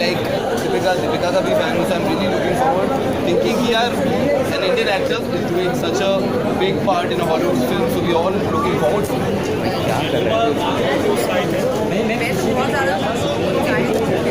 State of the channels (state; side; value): noise; left; hum, 20 dB below the sound